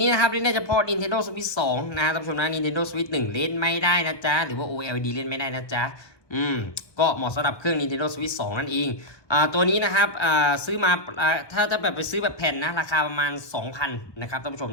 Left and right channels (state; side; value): late; right; 1.2 ms